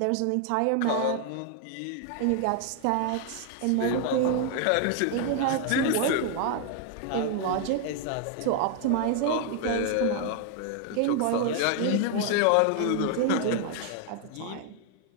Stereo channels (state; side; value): different; both; correlation 0.00